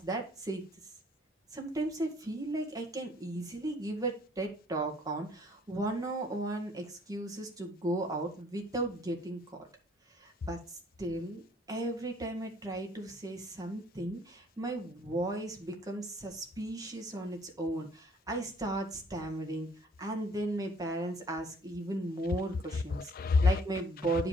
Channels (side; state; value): both; normal; correlation 0.59